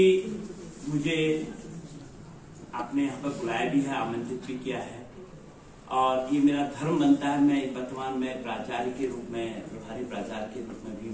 मुझे आपने यहाँ पर बुलाया भी है, आमंत्रित भी किया है, और ये मेरा धर्म बनता है। मैं वर्तमान में प्राचार्य के रूप में, प्रभारी प्राचार्य के रूप में भी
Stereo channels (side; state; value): both; identical; correlation 1.00